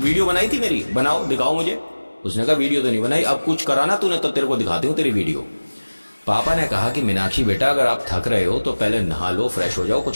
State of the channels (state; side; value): inverted; both; correlation -1.00